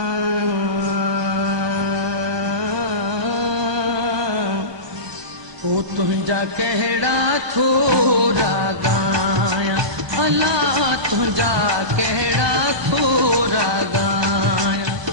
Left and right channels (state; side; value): late; left; 1.0 ms